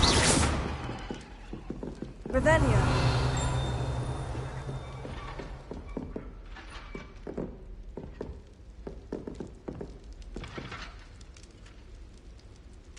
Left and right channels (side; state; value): both; identical; correlation 1.00